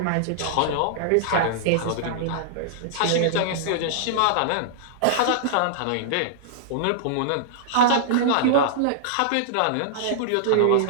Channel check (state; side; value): different; both; correlation -0.01